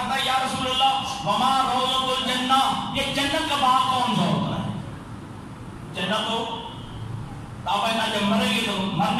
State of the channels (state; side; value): identical; both; correlation 1.00